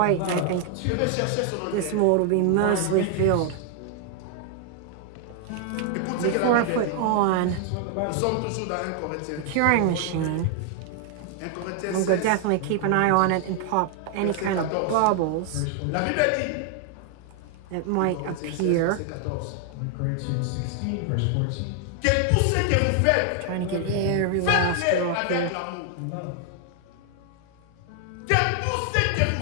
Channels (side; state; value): both; different; correlation 0.00